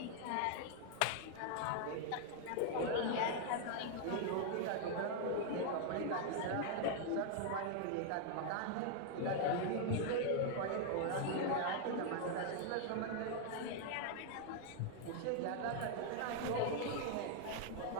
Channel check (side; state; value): both; different; correlation 0.00